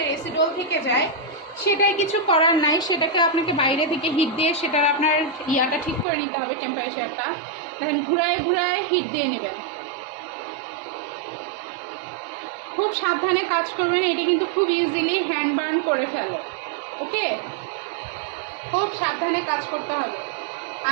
অ্যাসিডল থেকে যায়, সেটাই কিছু করার নাই, সেটাকে আপনাকে বাইরে থেকে হিট দিয়ে সেটার আপনার ইয়াটা ঠিক করে নিতে হবে, টেম্পারেচারটা। দেখেন ঘুরায় ঘুরায় হিট দিয়ে নেবেন, খুব সাবধানে কাজ করবেন। এটি কিন্তু খুব ইজিলি হ্যান্ড বার্ন করে ফেলে। ওকে, খুব সাবধানে কাজ করতে হবে।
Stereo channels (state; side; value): drops out; left; at 6.1 s